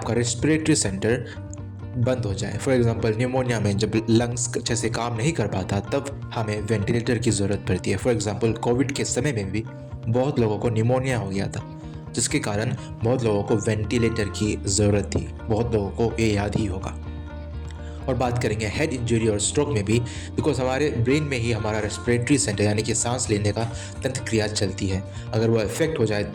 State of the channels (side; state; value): both; identical; correlation 1.00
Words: रेस्पिरेटरी सेंटर बंद हो जाए। फॉर एग्जांपल न्यूमोनिया में जब लंग्स अच्छे से काम नहीं कर पाता तब हमें वेंटिलेटर की ज़रूरत पड़ती है। फॉर एग्जांपल कोविड के समय में भी बहुत लोगों को न्यूमोनिया हो गया था, जिसके कारण बहुत लोगों को वेंटिलेटर की ज़रूरत थी। बहुत लोगों को ये याद ही होगा। और बात करेंगे हेड इंजरी और स्ट्रोक में भी, बिकॉज हमारे ब्रेन में ही हमारा रेस्पिरेटरी सेंटर यानी कि सांस लेने का तंत्र क्रिया चलती है। अगर वो इफेक्ट हो जाए